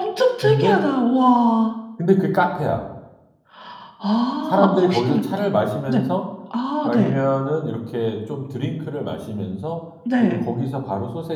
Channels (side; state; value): both; identical; correlation 1.00